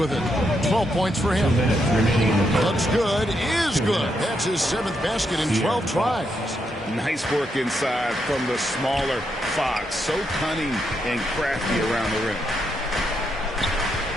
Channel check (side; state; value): both; normal; correlation 0.80